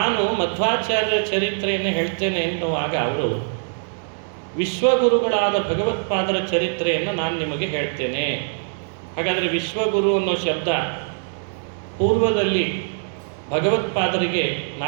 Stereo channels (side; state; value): left; silent; 64 dB below the other